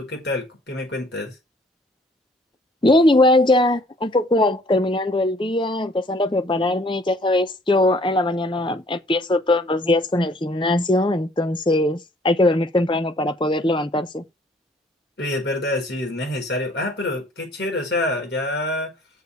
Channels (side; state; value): both; normal; correlation 0.58